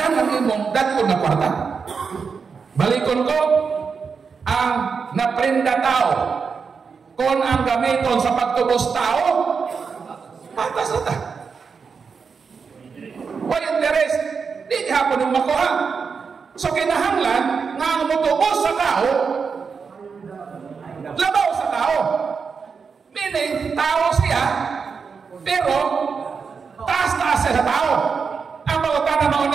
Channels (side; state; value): left; quieter; 5.6 dB